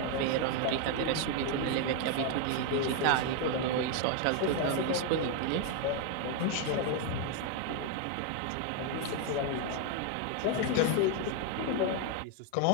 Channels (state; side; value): different; both; correlation 0.01